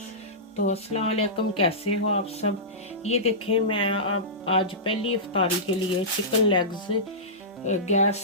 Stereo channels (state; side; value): normal; both; correlation -0.18